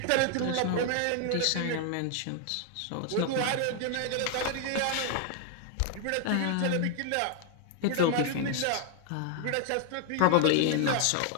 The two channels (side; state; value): both; different; correlation 0.00